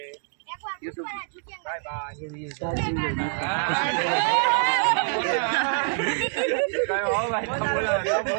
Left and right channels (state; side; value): silent; left; 61 dB below the other